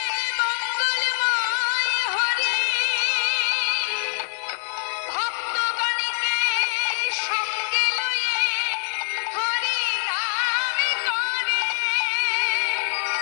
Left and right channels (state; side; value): silent; right; digital silence